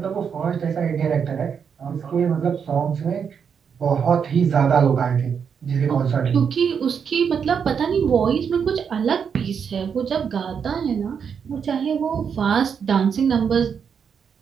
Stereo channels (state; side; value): quieter; left; 6.9 dB